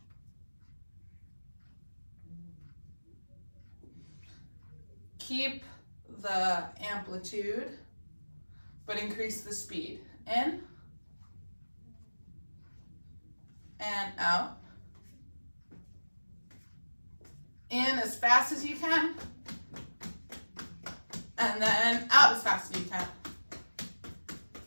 Keep the amplitude, but increase the speed. In and out. In as fast as you can. And then out as fast as you can.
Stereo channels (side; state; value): both; inverted; correlation -1.00